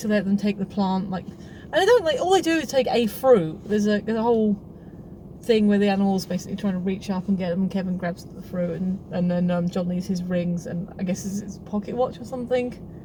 to let them take the plant, like, and they don't, like, all they do is take a fruit. There's a whole thing where the animals basically trying to reach up and get them, and Kevin grabs the fruit, and then John leaves his rings, and I guess it's his pocket watch or something.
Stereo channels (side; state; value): both; identical; correlation 1.00